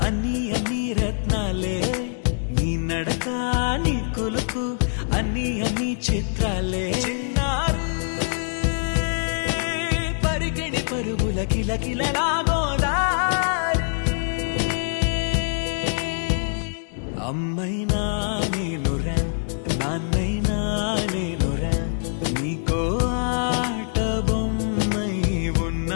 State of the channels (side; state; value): right; silent; digital silence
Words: అన్ని అన్ని రత్నాలే నీ నడకాని కులుకు అన్ని అన్ని చిత్రాలే పరికిణి పరుగుల కిలకిలలాగోదారి అమ్మైనా నేనురా నాన్నైనా నేనురా నీకో ఆట బొమ్మై